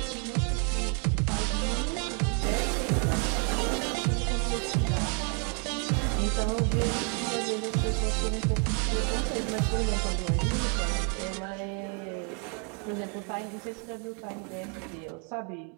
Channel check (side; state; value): left; quieter; 38.3 dB